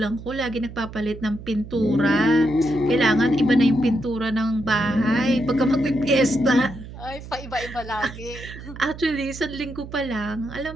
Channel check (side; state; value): right; noise; hum, 13 dB below the sound